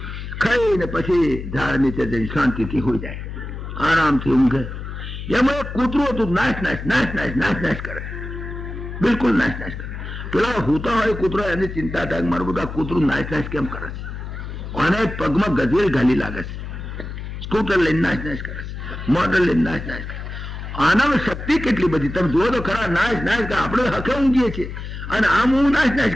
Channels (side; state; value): left; noise; hum, 8 dB below the sound